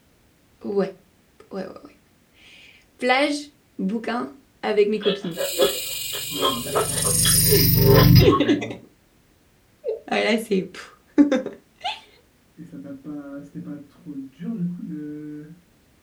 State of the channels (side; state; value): both; identical; correlation 1.00